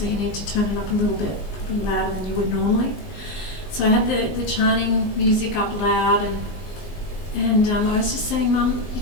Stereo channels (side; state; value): right; late; 19 ms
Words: you need to turn it up a little bit, probably louder than you would normally. So I had the chanting music up loud, and And I was just saying, Mum, you